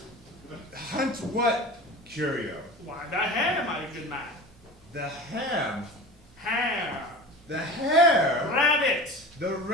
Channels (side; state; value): both; normal; correlation 0.34